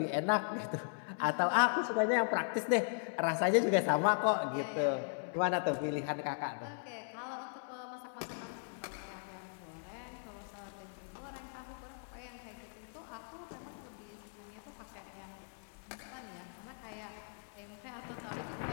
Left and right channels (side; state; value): right; silent; 52 dB below the other